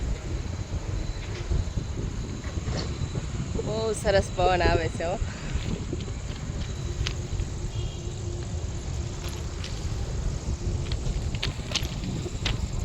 બહુ સરસ પવન આવે છે. હો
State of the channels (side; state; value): both; identical; correlation 1.00